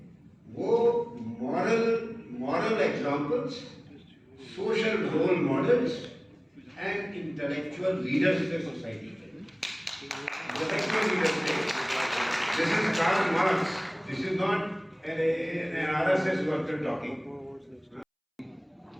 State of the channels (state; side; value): identical; both; correlation 1.00